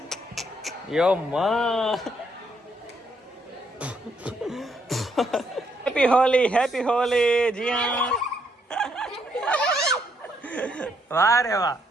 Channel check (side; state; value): both; normal; correlation 0.73